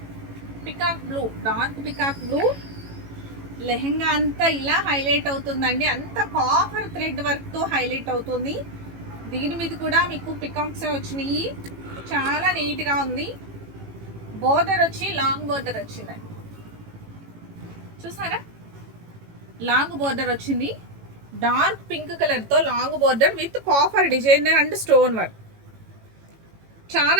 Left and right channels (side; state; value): left; late; 18 ms